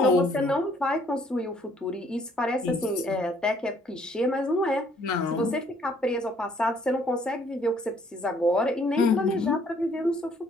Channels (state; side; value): normal; both; correlation 0.63